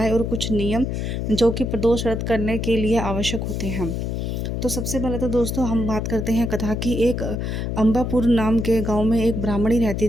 और कुछ नियम जो कि प्रदोष व्रत करने के लिए आवश्यक होते हैं। तो सबसे पहले तो दोस्तों हम बात करते हैं कथा की। एक अंबापुर नाम के गांव में एक ब्राह्मणी रहती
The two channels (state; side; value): noise; left; hum, 2 dB below the sound